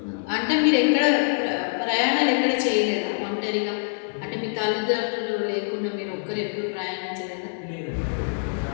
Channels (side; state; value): right; silent; 62 dB below the other